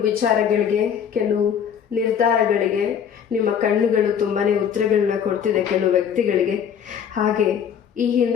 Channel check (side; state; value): right; quieter; 8.1 dB